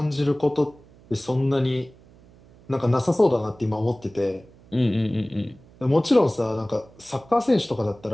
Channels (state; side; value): noise; right; hum, 26 dB below the sound